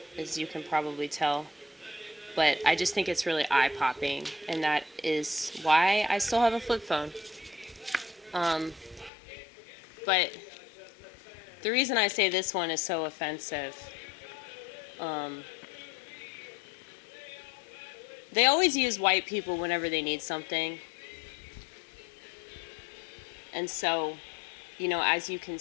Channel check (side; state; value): right; drops out; at 9.1 s